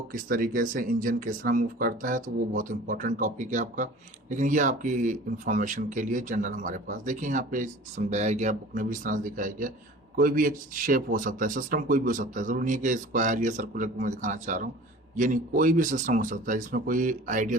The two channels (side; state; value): both; normal; correlation 0.43